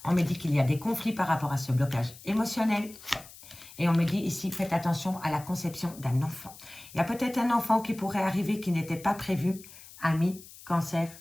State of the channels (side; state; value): left; noise; hiss, 19 dB below the sound